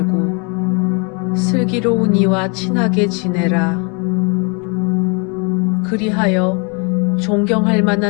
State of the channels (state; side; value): quieter; right; 34.5 dB